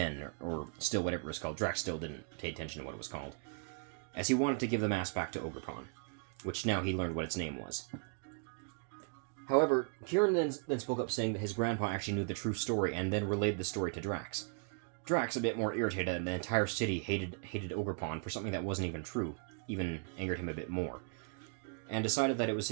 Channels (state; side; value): quieter; left; 39.9 dB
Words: or still whatever it was called. Drax still didn't pay attention to what it was called, as he wanted to give the mask back to Ogerpon, which now he learned what its name was. However, Keiran then spoke up, saying that his grandpa actually knew the true story, and then relayed the story to Drax. Drax, a bit more irritated that the entire city hated Ogerpon for something that wasn't even true, even angered him a bit more, and decided that